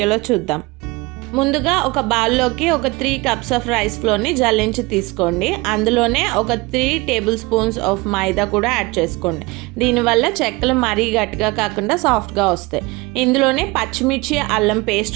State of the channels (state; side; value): quieter; left; 23.7 dB